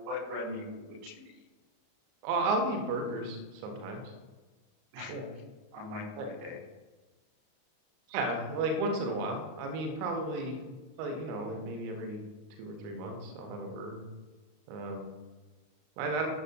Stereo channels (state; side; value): late; left; 38 ms